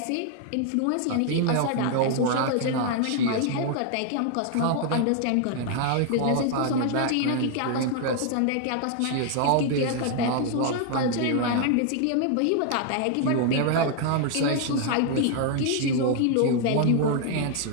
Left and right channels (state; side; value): different; both; correlation 0.00